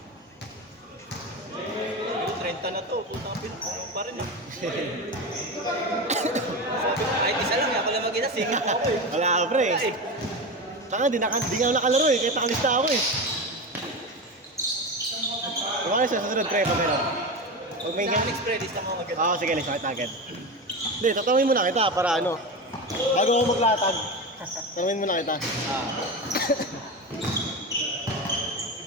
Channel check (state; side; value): normal; both; correlation 0.21